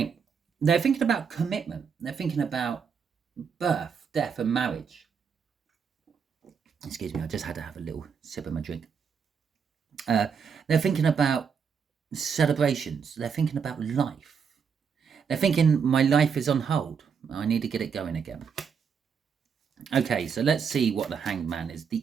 they're thinking about commitment. They're thinking about birth, death, and marriage. Excuse me, I just had to have a little sip of my drink. They're thinking about celebrations. They're thinking about life. They're thinking, my life is on hold. I need to get it going again. Okay, so let's see what the Hanged Man is.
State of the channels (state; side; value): quieter; left; 6.5 dB